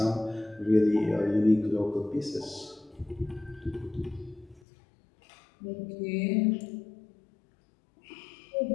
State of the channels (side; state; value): right; drops out; at 4.6 s